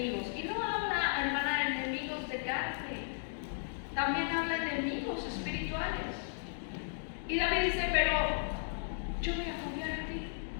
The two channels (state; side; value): silent; right; digital silence